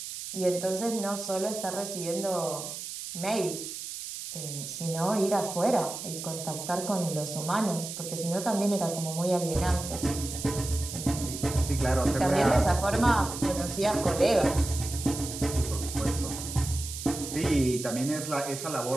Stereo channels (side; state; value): right; noise; hiss, 8 dB below the sound